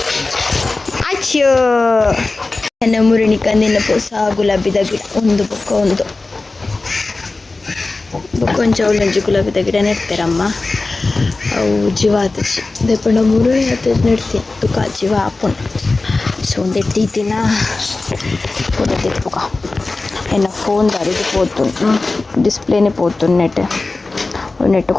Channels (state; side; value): quieter; right; 3.4 dB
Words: ಅಚ್ಚೋ ನನ್ನ ಮುರುಣಿ ಕಂದಿನ ಪೂಸ ಗುಲಾಬಿದ ಗಿಡ ಒಂದು ಒಂದು ಕೊಂಚ ಒಳ್ಳೊಂಜಿ ಗುಲಾಬಿದ ಗಿಡ ನೆಡ್ತಾರಮ್ಮ. ಅವು ಜೀವ ಆತಚಿ ದೇಪಂಡ ಮುರುಳಿ ಆತ ನೆಡ್ತೀನಿ ತುಕ ಜೀವ ಆಪುನ್. ಸೊ ಒಂದು ಎಟ್ಟಿನ ಫೋಟೋ ತೆತ್ಪುಕ ಎನ್ನ ಫೋನ್ ದಾರಿದು పోతుంది డిస్ప్లేనే పోతుంది నెట్